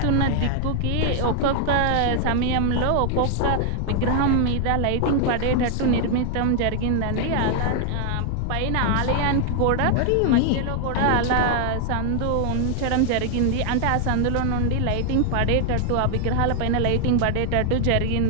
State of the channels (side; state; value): both; different; correlation 0.00